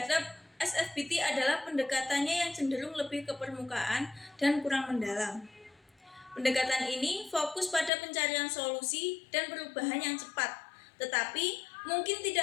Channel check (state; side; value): drops out; right; at 7.9 s